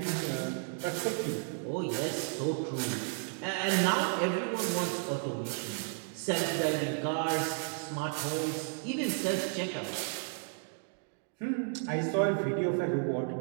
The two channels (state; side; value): silent; left; 56 dB below the other